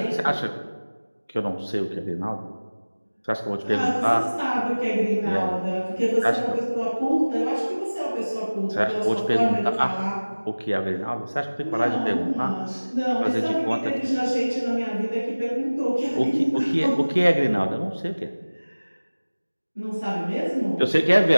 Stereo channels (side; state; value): both; inverted; correlation -1.00